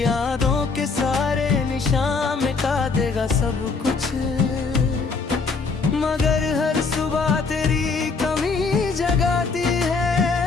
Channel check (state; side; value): quieter; right; 4.5 dB